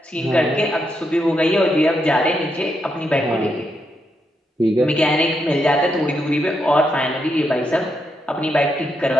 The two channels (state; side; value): normal; both; correlation 0.81